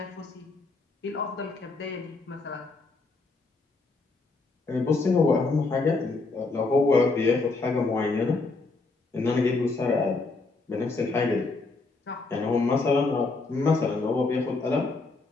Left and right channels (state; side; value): quieter; right; 3.6 dB